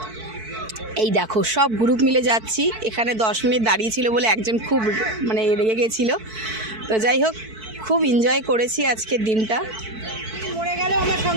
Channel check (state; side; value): late; left; 4.5 ms